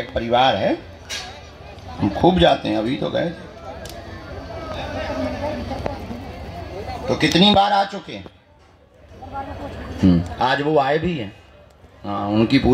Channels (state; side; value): identical; both; correlation 1.00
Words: एक परिवार है, हम खूब जाते हैं। अभी तो गए थे। तो कितनी बार आ चुके हैं? आज वो आए भी हैं। हाँ, उनकी